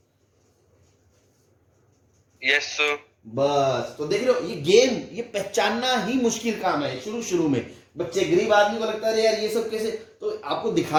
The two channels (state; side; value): identical; both; correlation 1.00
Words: Yes sir. बस, तो देख रहे हो, ये गेम ये पहचानना ही मुश्किल काम है शुरू में। बच्चे गरीब आदमी को लगता है यार ये सब कैसे, तो आपको